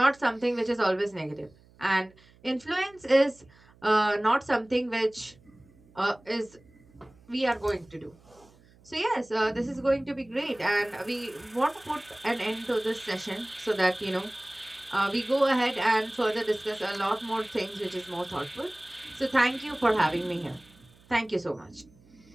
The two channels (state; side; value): noise; right; hum, 28 dB below the sound